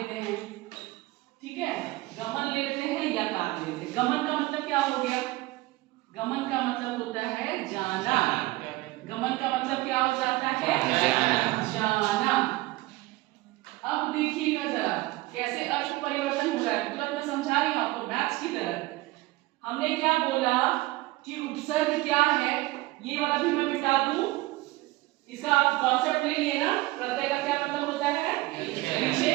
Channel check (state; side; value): quieter; left; 20.0 dB